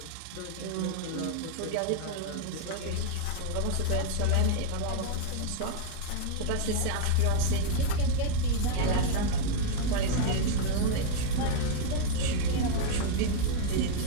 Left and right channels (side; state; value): both; different; correlation 0.00